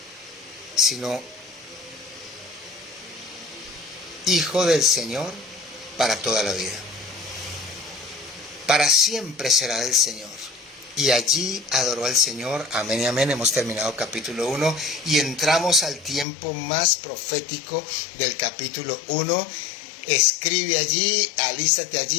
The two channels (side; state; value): right; drops out; at 16.2 s